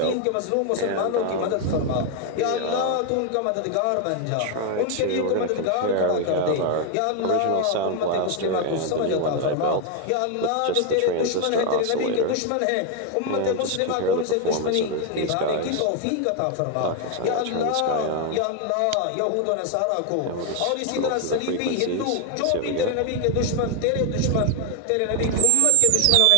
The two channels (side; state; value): both; different; correlation 0.01